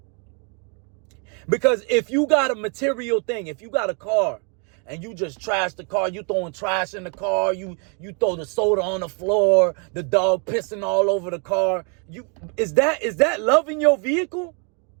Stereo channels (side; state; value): left; quieter; 37.6 dB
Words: Because if you got a material thing, if you got a car, and you just trash the car, you throwing trash in the car, you throw the soda on the floor, the dog pissing all over the car. Is that loving your vehicle?